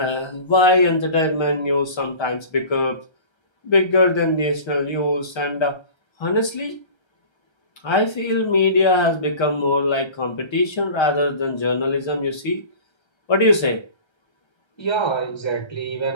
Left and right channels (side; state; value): right; late; 1.3 ms